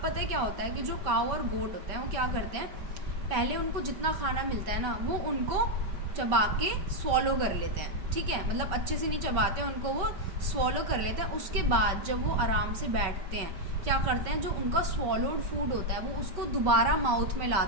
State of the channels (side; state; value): left; late; 5.3 ms